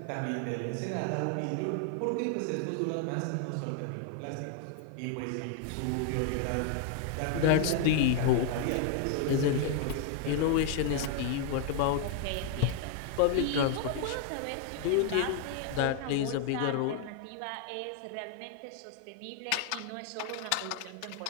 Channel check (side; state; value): both; different; correlation 0.00